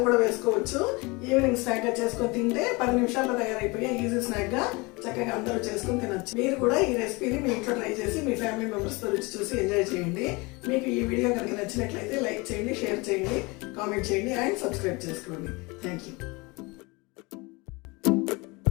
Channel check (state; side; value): quieter; right; 25.9 dB